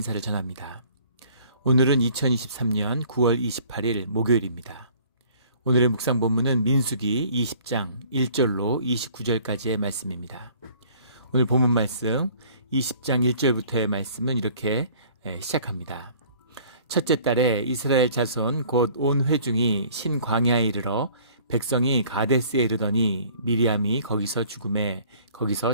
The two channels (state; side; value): inverted; both; correlation -0.53